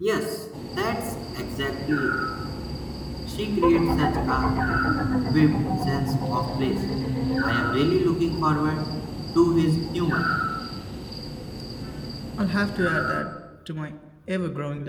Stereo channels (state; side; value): identical; both; correlation 1.00